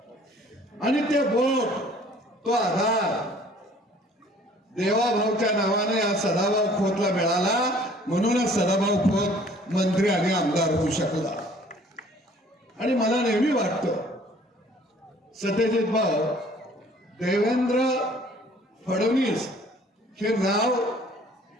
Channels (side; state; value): both; normal; correlation 0.54